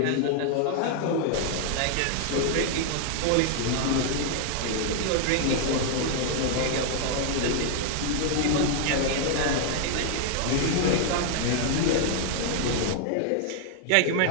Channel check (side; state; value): both; different; correlation 0.00